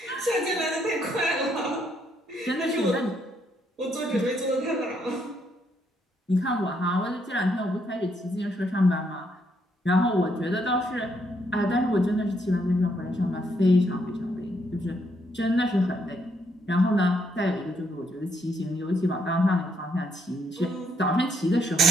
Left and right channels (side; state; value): both; normal; correlation 0.74